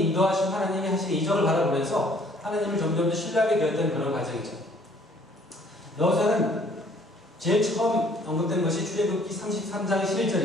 인도하신, 하나님이 하신 이적을 바라보면서 하나님을 점점 더 신뢰하게 되었던 그런 과정이죠. 여호수아는 제일 처음 언급된 것이 출애굽기 33장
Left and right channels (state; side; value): normal; both; correlation 0.59